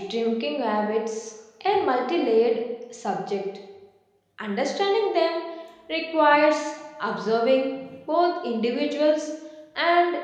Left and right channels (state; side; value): identical; both; correlation 1.00